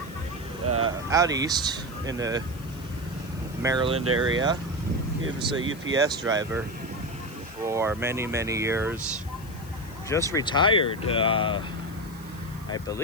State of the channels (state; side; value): noise; left; hiss, 22 dB below the sound